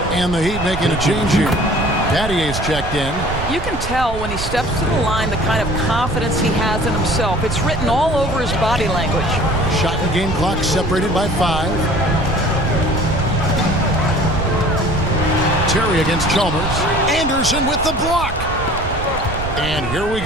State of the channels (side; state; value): right; noise; rumble, 7 dB below the sound